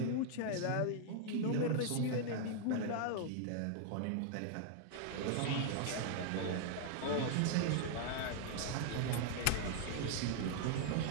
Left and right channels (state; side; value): different; both; correlation 0.00